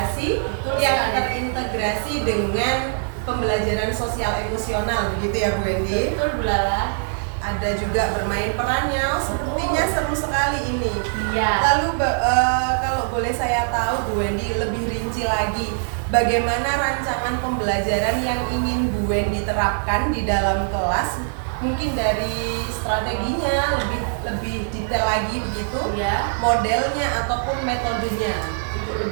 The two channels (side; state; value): left; silent; 57 dB below the other